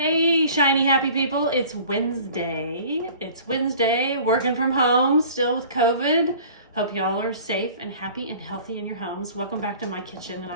Hey, shiny happy people. It's Wednesday. Working from home, still with COVID. Hope y'all are safe and happy and healthy in your homes. Welcome back to my kitchen, and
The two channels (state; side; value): inverted; both; correlation -0.46